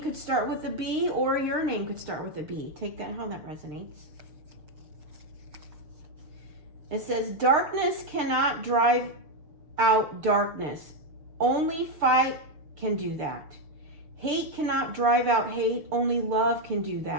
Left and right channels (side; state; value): left; late; 6.7 ms